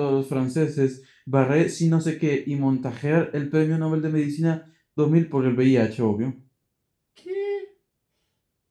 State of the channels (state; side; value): identical; both; correlation 1.00